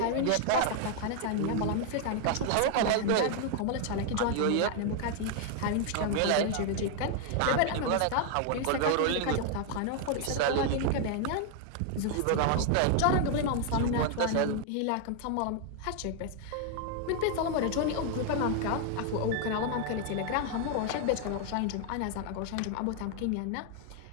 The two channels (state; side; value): different; both; correlation 0.00